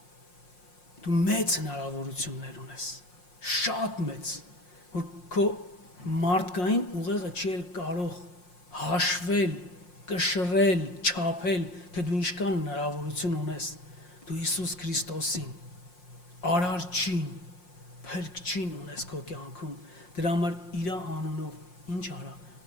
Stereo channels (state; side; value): late; right; 5.6 ms